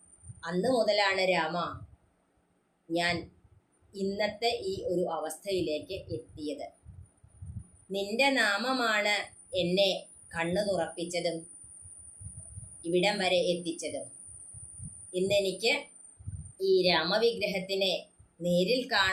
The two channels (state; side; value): identical; both; correlation 1.00